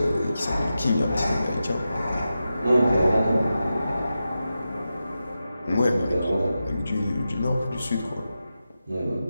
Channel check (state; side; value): inverted; both; correlation -0.91